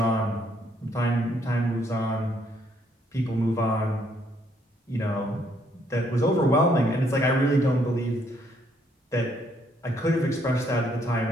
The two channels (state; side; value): normal; both; correlation 0.69